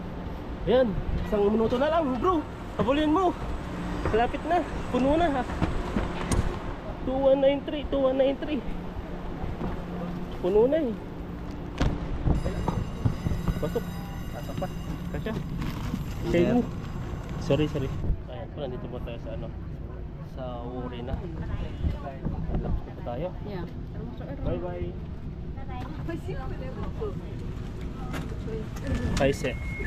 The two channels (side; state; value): both; identical; correlation 1.00